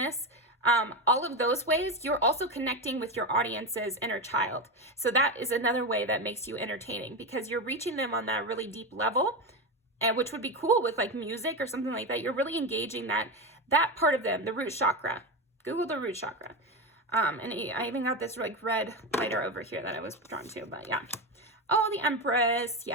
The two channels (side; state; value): both; normal; correlation 0.16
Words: all of those ways, you're also connecting with your audience's inner child. So that is another way that makes you entertaining, because you're reaching them on that really deep level, and which would be cool with like music or something like that. You're really engaging that part of them, the root chakra. Google the root chakra. And I even got this like red lighter over here that I was drawn to, but yeah. Oh, the Empress,